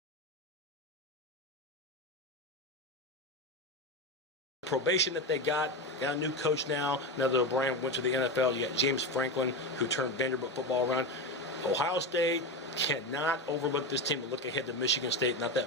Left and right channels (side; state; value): both; normal; correlation 0.17